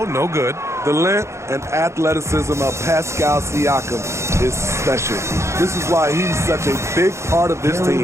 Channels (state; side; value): late; left; 0.14 ms